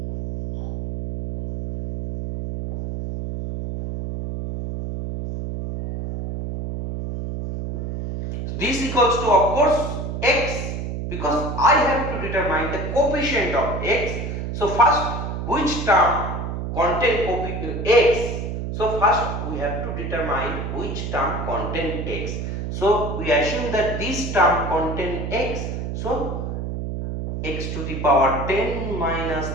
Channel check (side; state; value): right; noise; hum, 4 dB below the sound